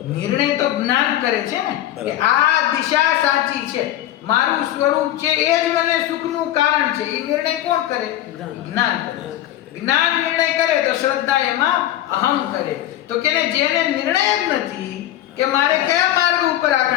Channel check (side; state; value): right; quieter; 13.1 dB